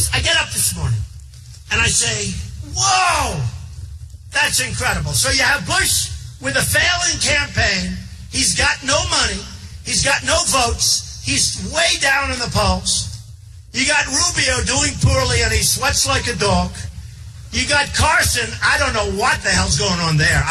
I get up this morning and I say, whoa, that's incredible. So you have Bush with a failing campaign. He's got no money. He's got no votes. He's way down in the polls. You got Rubio doing poorly and he sweats like a dog. You got Carson. I don't know what the hell's going on there.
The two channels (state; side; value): identical; both; correlation 1.00